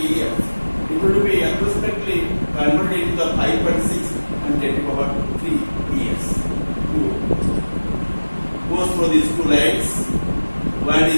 years, it will be approximately converted into the 5.6 and 10 to the power 3 years. Goes through these two lines. One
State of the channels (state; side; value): inverted; both; correlation -1.00